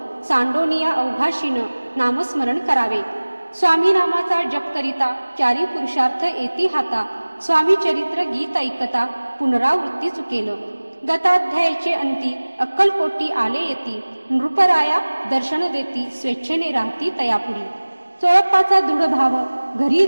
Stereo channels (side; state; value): both; inverted; correlation -1.00